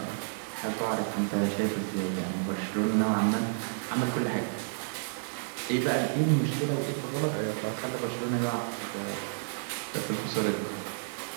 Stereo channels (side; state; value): left; silent; digital silence